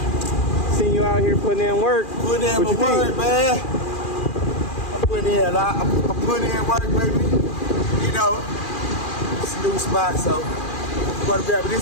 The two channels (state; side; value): late; right; 2.4 ms